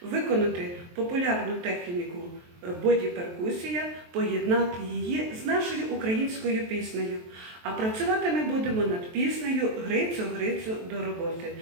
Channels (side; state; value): left; late; 23 ms